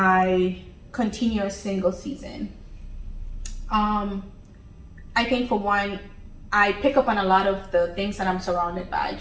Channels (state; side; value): identical; both; correlation 1.00